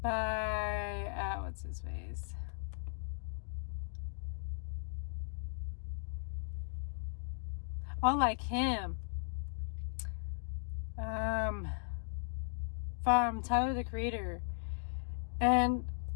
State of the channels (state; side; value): silent; right; digital silence